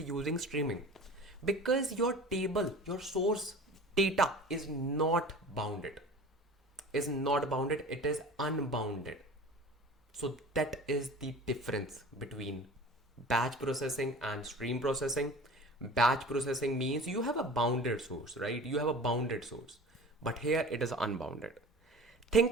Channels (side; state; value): both; normal; correlation 0.39